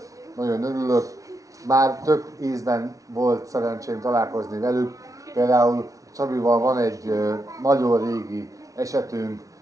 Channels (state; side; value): late; left; 0.17 ms